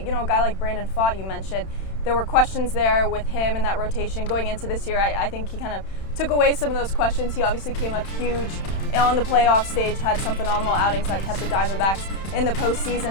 guy like Brandon Pfaadt, you mentioned. There were questions there with him in that rotation going into this year. I think he kind of took away some of those questions. He obviously came up huge on the playoff stage, had some phenomenal outings that kept the Diamondbacks in the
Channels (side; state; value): right; late; 31 ms